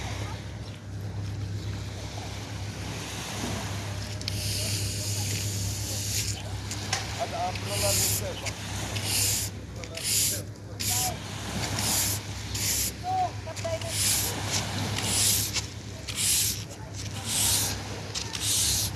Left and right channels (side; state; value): both; identical; correlation 1.00